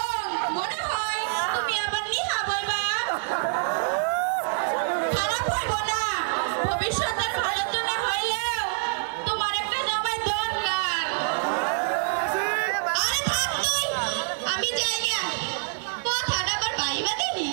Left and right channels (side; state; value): left; silent; digital silence